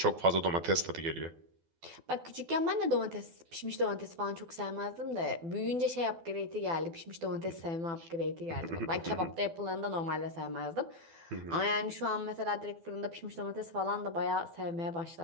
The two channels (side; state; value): left; late; 12 ms